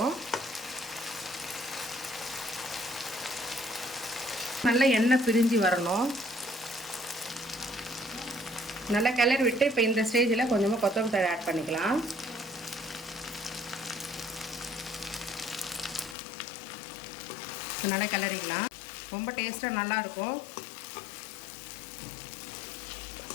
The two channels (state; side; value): drops out; right; at 16.2 s